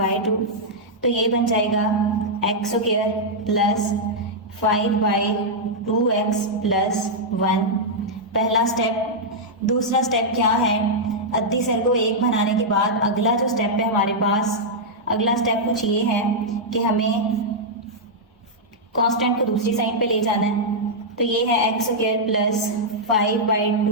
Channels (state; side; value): normal; both; correlation -0.07